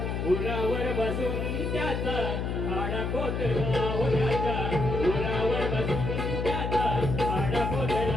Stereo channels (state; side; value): noise; left; hum, 2 dB below the sound